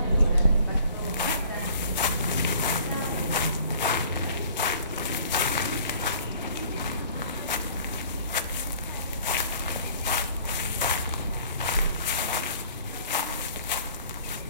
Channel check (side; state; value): both; inverted; correlation -0.52